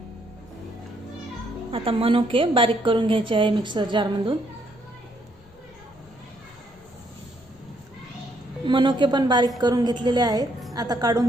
आता मनुके बारीक करून घ्यायचे आहे मिक्सर जार मधून। मनुके पण बारीक करून घेतलेले आहेत, आता काढून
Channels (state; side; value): noise; left; rumble, 26 dB below the sound